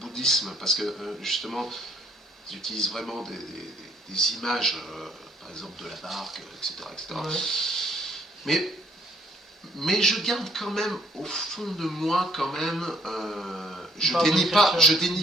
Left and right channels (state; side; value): normal; both; correlation 0.64